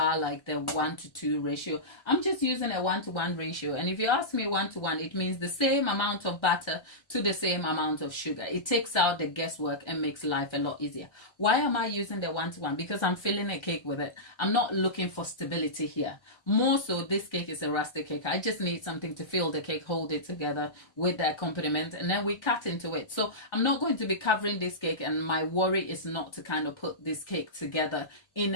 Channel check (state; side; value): late; right; 1.4 ms